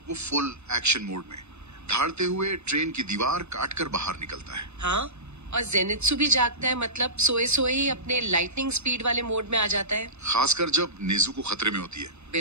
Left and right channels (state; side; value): late; left; 0.81 ms